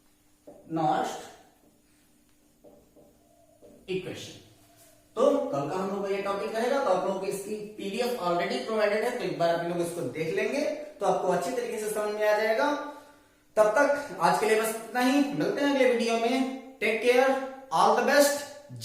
Nernst equation. तो कल का हम लोग ये टॉपिक रहेगा, तो आप लोगों को इसकी पीडीएफ ऑलरेडी प्रोवाइडेड है, तो एक बार आप लोग इसको देख लेंगे तो आपको अच्छी तरीके से समझ में आ जाएगा। तब तक आज के लिए बस इतना ही, मिलते हैं अगले वीडियो में। Take care, all the best,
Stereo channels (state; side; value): identical; both; correlation 1.00